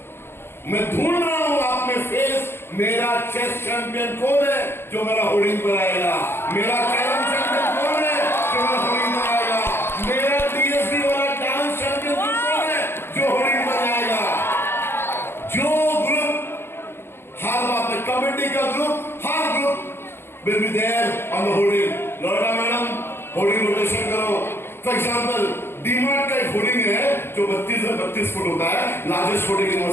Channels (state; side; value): late; right; 0.11 ms